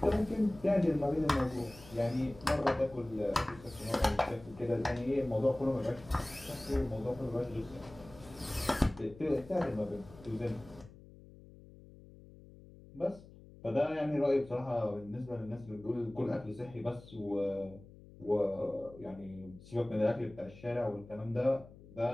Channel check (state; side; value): noise; left; hum, 20 dB below the sound